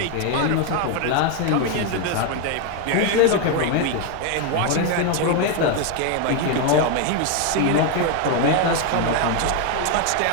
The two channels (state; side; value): different; both; correlation 0.01